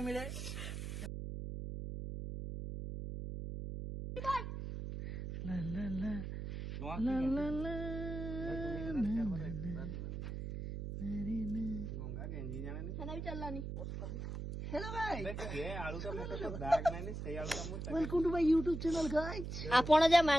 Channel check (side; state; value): right; noise; hum, 5 dB below the sound